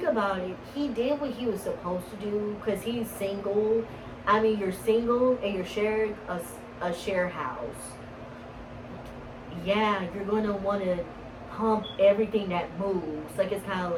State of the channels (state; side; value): identical; both; correlation 1.00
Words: about it, he did what he was supposed to do because he's single. I mean, you're single and you're sharing a share house. Yeah, you're going to want to hump everything that moves. Like, it's kind